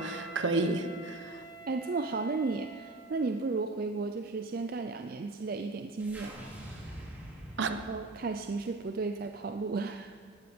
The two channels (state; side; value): quieter; left; 3.1 dB